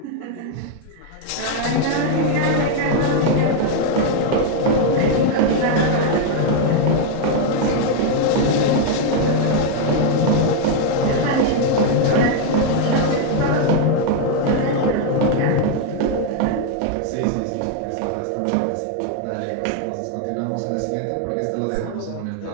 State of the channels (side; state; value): both; different; correlation 0.00